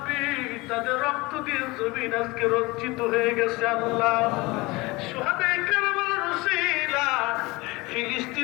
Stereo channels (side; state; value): right; quieter; 22.9 dB